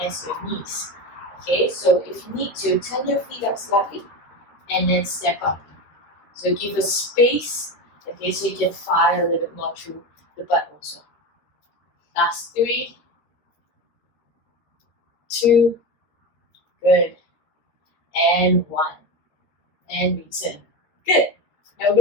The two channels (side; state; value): right; late; 13 ms